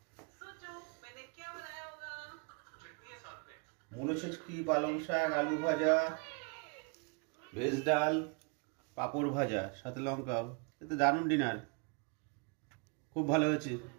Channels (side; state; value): left; quieter; 31.7 dB